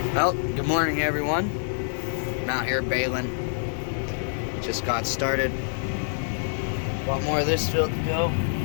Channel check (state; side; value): silent; right; digital silence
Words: Well, good morning everyone. I'm out here baling. Just got started. A lot more of this field to go.